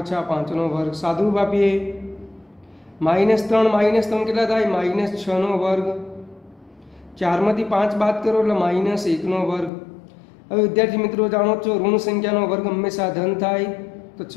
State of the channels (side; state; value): right; drops out; at 9.7 s